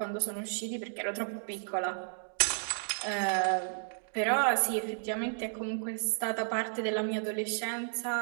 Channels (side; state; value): left; silent; digital silence